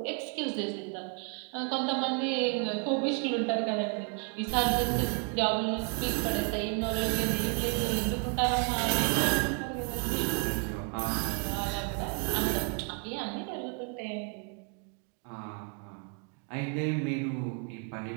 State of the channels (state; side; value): quieter; left; 38.6 dB